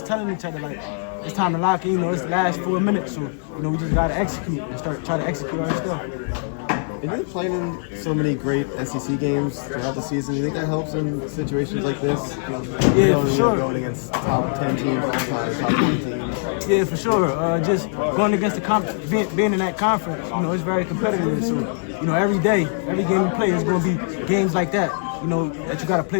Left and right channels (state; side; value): silent; right; 62 dB below the other